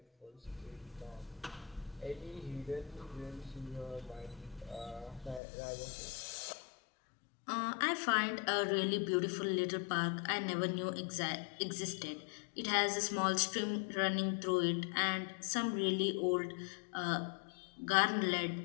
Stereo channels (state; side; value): drops out; right; at 5.4 s